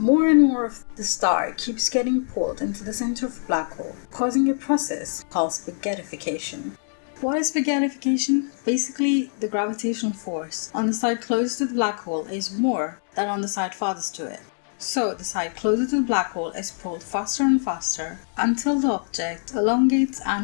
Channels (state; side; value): silent; right; 62 dB below the other